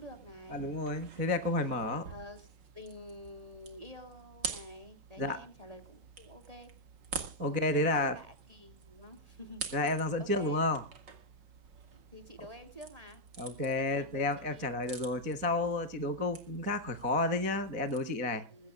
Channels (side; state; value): left; late; 5.5 ms